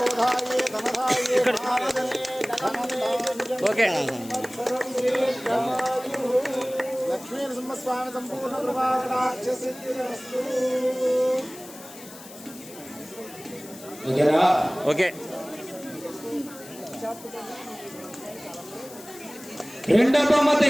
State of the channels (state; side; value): noise; left; hiss, 17 dB below the sound